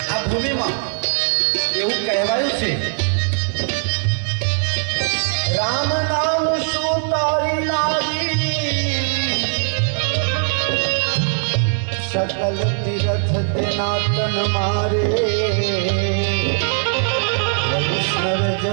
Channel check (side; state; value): left; silent; 59 dB below the other